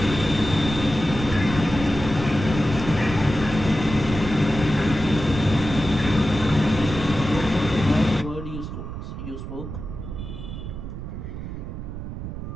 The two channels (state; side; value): noise; right; rumble, 8 dB below the sound